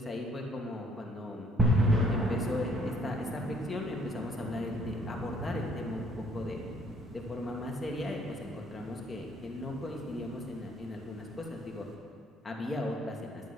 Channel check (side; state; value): both; normal; correlation 0.63